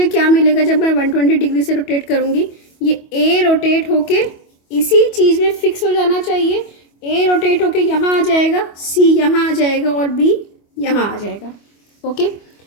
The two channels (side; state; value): right; late; 25 ms